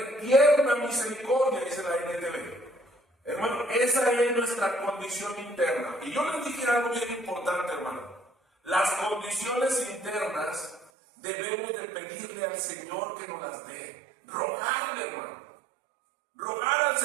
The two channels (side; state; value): left; drops out; at 10.9 s